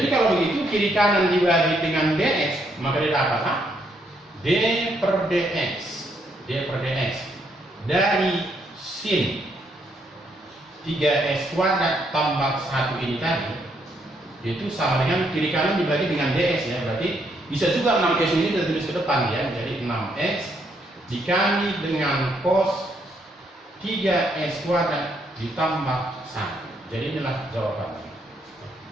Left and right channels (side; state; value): both; normal; correlation 0.74